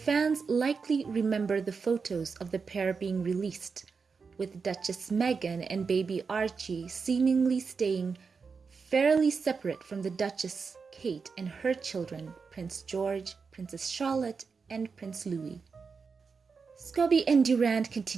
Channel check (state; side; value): quieter; left; 5.2 dB